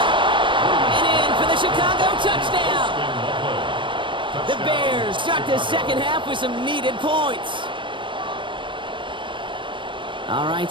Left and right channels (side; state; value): left; late; 0.24 ms